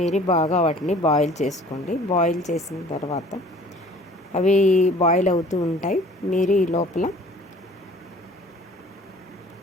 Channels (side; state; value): both; normal; correlation 0.51